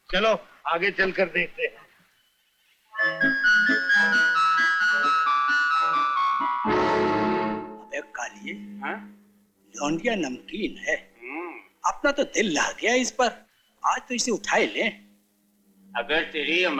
चलो आगे चलकर देखते हैं। अबे कालिए, हाँ? लौंडिया नमकीन है। अपना तो दिल ला गया इस पर। आज तो इसे उठा ही ले। अगर तेरी ये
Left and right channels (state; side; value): identical; both; correlation 1.00